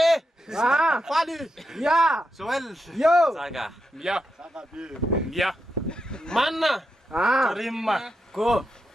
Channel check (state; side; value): normal; both; correlation 0.86